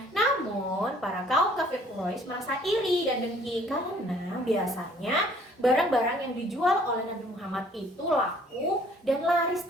namun para kaum kafir Quraisy merasa iri dan dengki karena biasanya barang-barang yang dijual oleh Nabi Muhammad itu laku dan laris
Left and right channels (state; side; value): normal; both; correlation 0.58